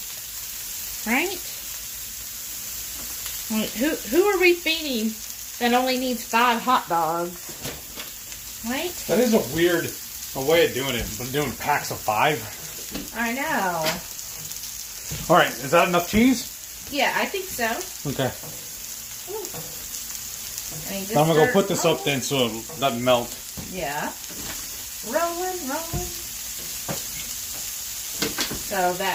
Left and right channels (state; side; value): identical; both; correlation 1.00